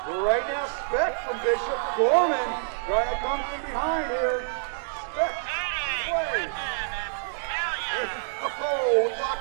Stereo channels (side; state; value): left; silent; digital silence